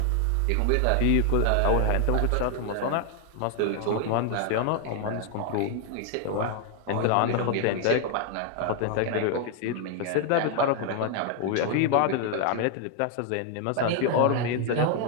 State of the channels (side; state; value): both; different; correlation 0.00